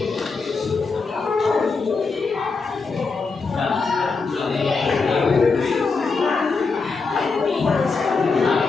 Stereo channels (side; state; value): right; quieter; 4.4 dB